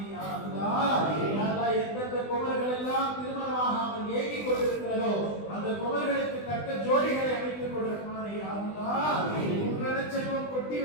யா அல்லாஹ். யா அல்லாஹ் எந்தெந்த குமர்கள் எல்லாம் திருமணமாகாமல் ஏங்கிக் கொண்டிருக்கிறதோ அந்த குமர்களுக்கு தக்க ஜோடிகளை அமைத்துக் கொடு ரஹ்மானே யா அல்லாஹ். குன்றன செல்வம் கொட்டி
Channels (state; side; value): late; right; 20 ms